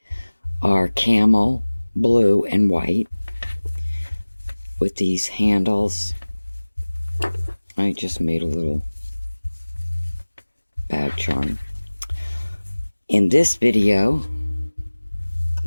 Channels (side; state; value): both; inverted; correlation -1.00